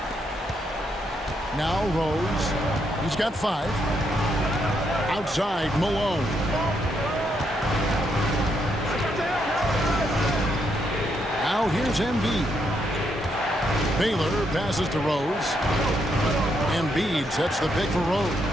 Now Rose. He's got 5. Outside, Malone. Now here's Embiid. Baylor passes to Rose. Embiid sets the pick for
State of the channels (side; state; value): both; normal; correlation 0.77